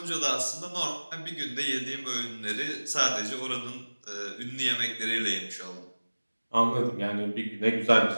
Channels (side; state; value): both; inverted; correlation -1.00